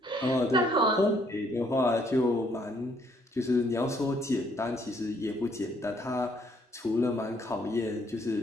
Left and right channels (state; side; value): normal; both; correlation 0.67